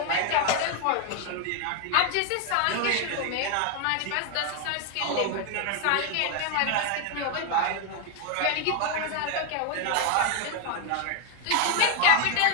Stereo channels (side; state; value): both; different; correlation 0.01